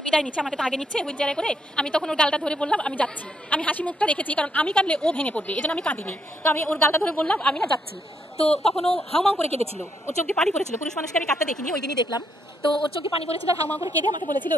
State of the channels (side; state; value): both; normal; correlation 0.76